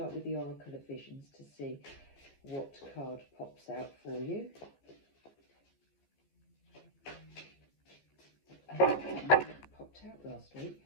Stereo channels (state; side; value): late; right; 14 ms